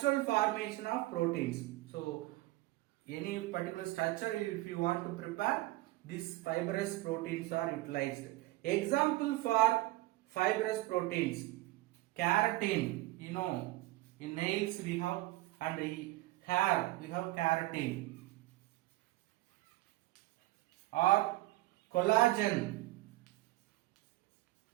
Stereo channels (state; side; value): quieter; left; 18.6 dB